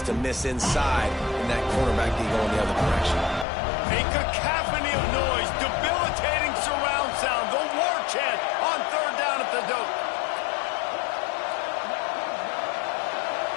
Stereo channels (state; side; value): drops out; right; at 3.5 s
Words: to miss inside and that cornerback can go in the other direction. A cacophony of noise, debilitating surround sound, the war chant on 3rd down at the dope.